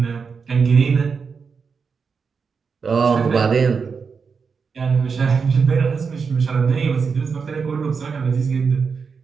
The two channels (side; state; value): left; quieter; 5.5 dB